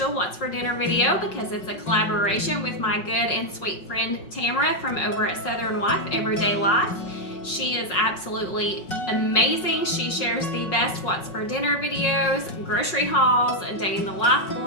What's for Dinner video because it's a collaboration with my good and sweet friend Tamara from over at Southern Wife, Everyday Life. She is absolutely amazing. She shares the best What's for Dinner videos, grocery hauls, day in the life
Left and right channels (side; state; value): right; late; 5.5 ms